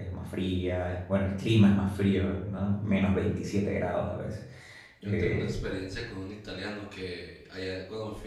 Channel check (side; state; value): both; identical; correlation 1.00